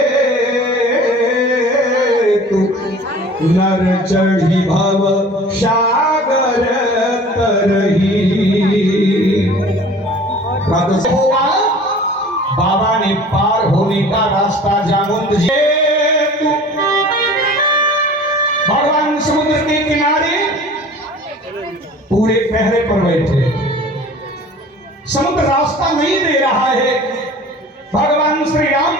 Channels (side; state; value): both; normal; correlation 0.44